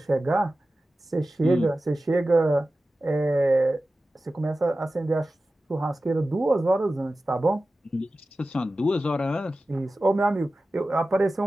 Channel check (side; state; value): both; normal; correlation 0.95